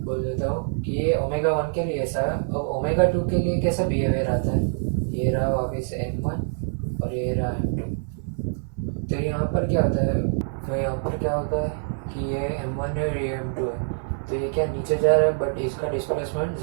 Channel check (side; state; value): left; silent; 57 dB below the other